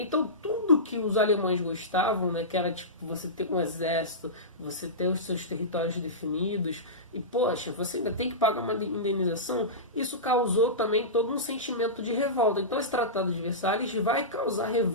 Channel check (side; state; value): both; normal; correlation -0.18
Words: tudo que os alemães gostavam, né, que era tipo você ter um exército, você ter os seus territórios definidos, e poxa, você ainda tem que pagar uma indenização, isso causou também todo um sentimento de revolta. Então esse Tratado de Versalhes vai causar